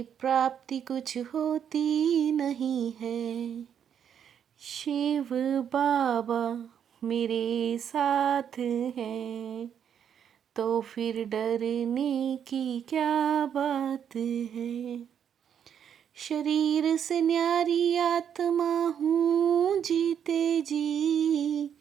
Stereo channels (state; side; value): quieter; left; 8.5 dB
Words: प्राप्ति कुछ होती नहीं है। शिव बाबा मेरे साथ हैं, तो फिर डरने की क्या बात है। शरीर से न्यारी आत्मा हूँ जीते जी,